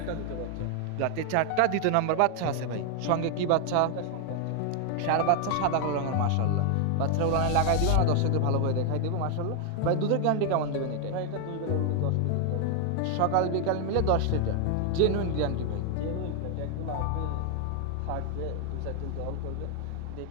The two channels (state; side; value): different; both; correlation 0.00